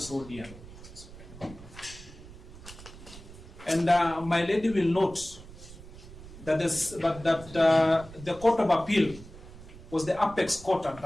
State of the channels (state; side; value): noise; right; rumble, 16 dB below the sound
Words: so dear. And my lady will note that, the Court of Appeal was the apex court at